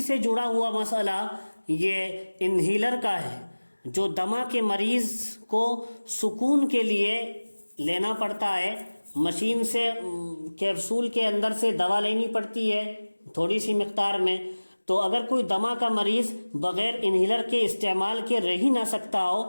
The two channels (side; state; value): both; inverted; correlation -1.00